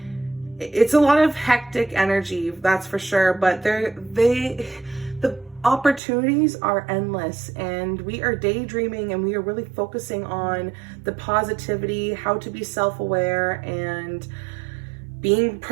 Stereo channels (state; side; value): drops out; left; at 6.0 s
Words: It's a lot of hectic energy, that's for sure, but the opportunities are endless, and we are daydreaming, and we are really focusing on the positivity, how to be self-aware and being